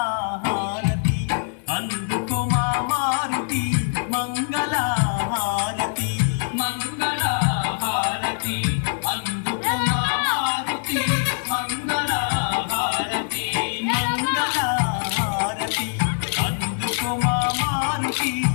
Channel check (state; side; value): silent; right; digital silence